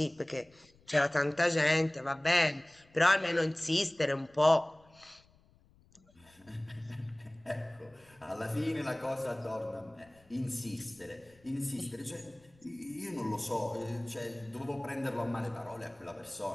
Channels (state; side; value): noise; left; rumble, 30 dB below the sound